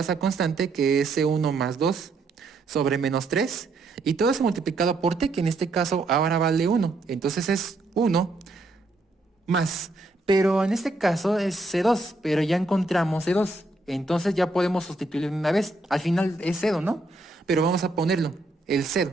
esa constante, que es c1 más 2 sobre menos 3, y todo eso multiplicado por t, que en este caso ahora vale 1. Entonces es 1 más. Pero en este caso es C2, pero ya encontramos C2. Entonces ya podemos sustituirlo de una vez. Al final es 0, ¿no? Pero vamos a ponerlo, el 0,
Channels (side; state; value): left; quieter; 3.0 dB